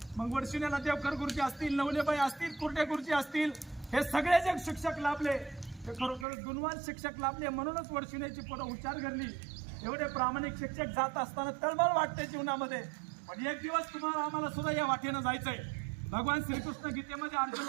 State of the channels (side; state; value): left; drops out; at 6.2 s